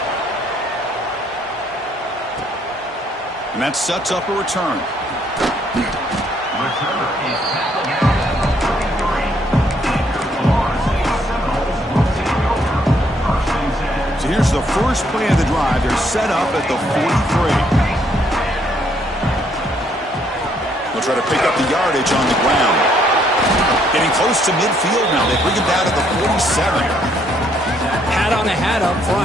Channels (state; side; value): normal; both; correlation 0.69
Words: And that sets up a return. Here's the first play of the drive. They're set up at the 43. They'll try to pick up the yardage on the ground. Getting close to midfield now. They bring him down at the 47. Hat on a hat up